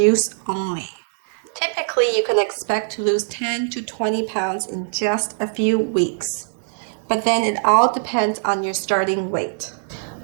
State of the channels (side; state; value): left; silent; digital silence